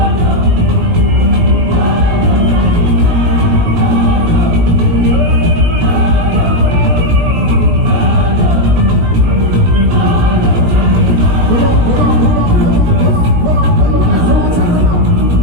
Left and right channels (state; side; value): late; left; 19 ms